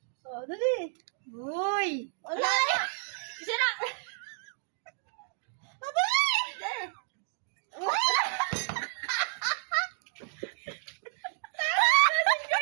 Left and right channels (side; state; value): left; silent; digital silence